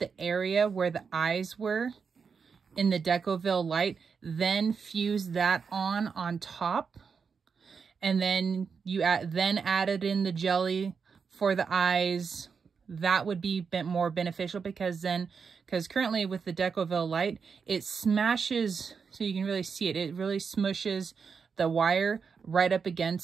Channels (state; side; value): quieter; left; 5.8 dB